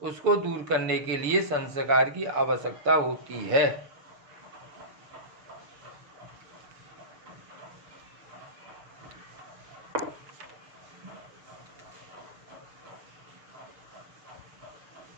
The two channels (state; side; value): late; left; 6.9 ms